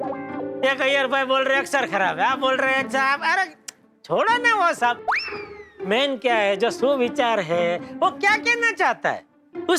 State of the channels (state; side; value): identical; both; correlation 1.00